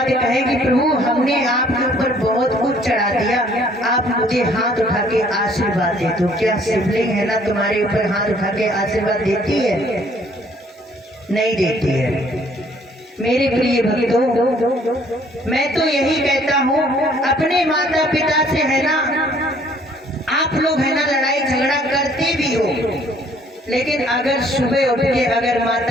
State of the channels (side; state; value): both; normal; correlation 0.60